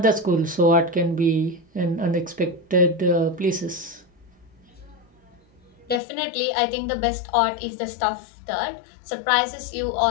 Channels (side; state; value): right; drops out; at 6.0 s